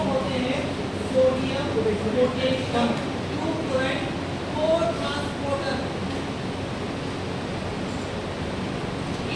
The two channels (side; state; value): both; identical; correlation 1.00